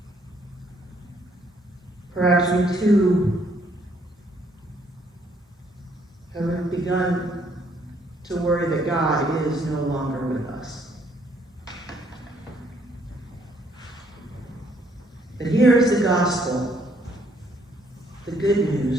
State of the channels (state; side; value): normal; both; correlation 0.67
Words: perhaps we too have begun to worry that God is no longer with us. But here is the gospel, the good